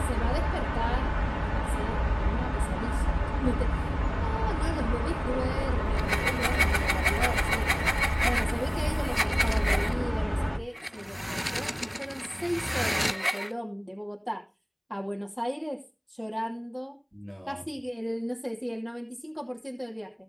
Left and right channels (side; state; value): both; identical; correlation 1.00